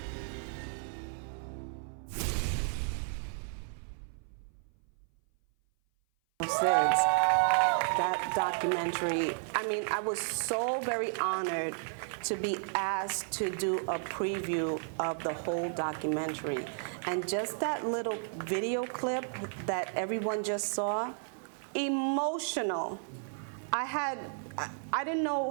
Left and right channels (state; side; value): silent; left; 56 dB below the other